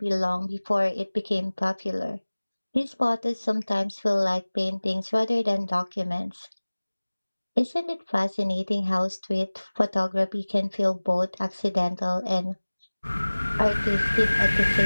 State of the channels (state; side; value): inverted; both; correlation -1.00